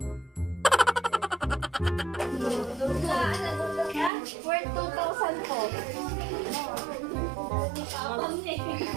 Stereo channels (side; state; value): left; drops out; at 4.1 s